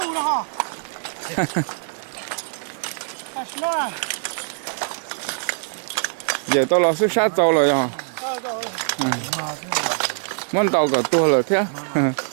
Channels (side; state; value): left; silent; digital silence